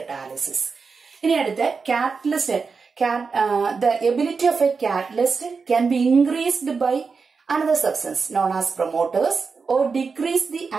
ഇനി അടുത്ത catalyst. The ability of a catalyst can be increased by another substance known as promoters or decrease the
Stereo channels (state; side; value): quieter; left; 5.0 dB